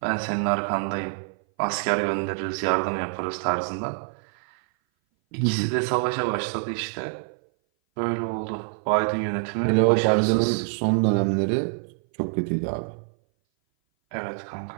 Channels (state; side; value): silent; left; 58 dB below the other